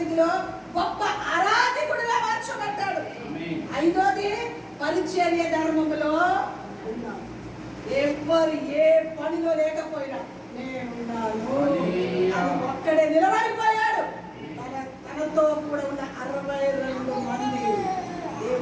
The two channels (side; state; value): both; identical; correlation 1.00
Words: గొప్ప ఆరాధకుడిగా మార్చబడ్డాడు. ఐదోది పరిచర్య ధర్మములో ఉన్నాడు. ఎవరు ఏ పనిలో లేకపోయినా నేనున్నాను అని ఒక్కడే నిలబడిపోయాడు. తనతో కూడా ఉన్న 62 మంది